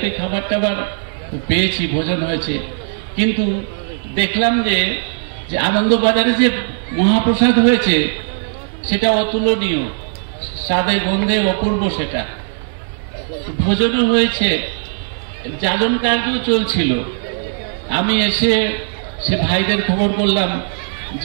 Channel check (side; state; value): left; silent; digital silence